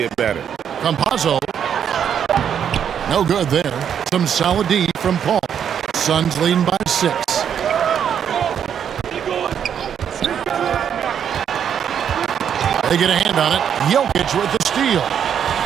better. Campazzo. No good there. Some solid D from Paul. Suns leading by 6. They get a hand on it. Jokic with the steal.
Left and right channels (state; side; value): quieter; left; 8.5 dB